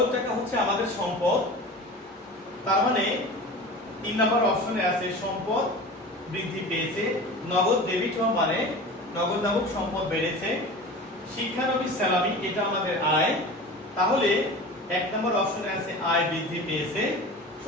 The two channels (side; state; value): both; normal; correlation 0.35